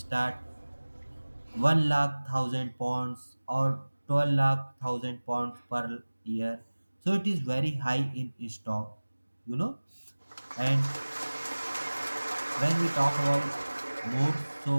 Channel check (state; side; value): inverted; both; correlation -1.00